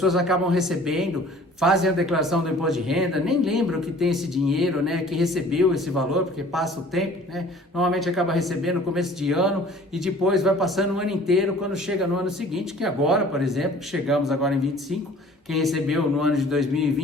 acabam recebendo, fazem a declaração do imposto de renda, nem lembram que tem esse dinheiro, né, que recebeu esse valor, porque passa o tempo, né, normalmente acaba recebendo no começo de ano e depois vai passando o ano inteiro, quando chega no ano seguinte, que agora, por exemplo, chegamos agora em 25, quem recebeu no ano de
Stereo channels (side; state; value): both; normal; correlation 0.50